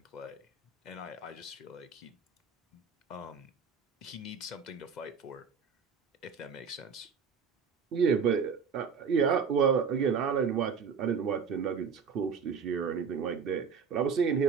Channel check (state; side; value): quieter; left; 6.1 dB